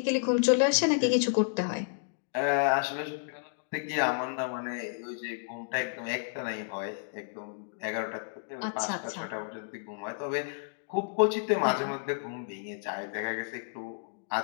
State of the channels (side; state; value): right; silent; digital silence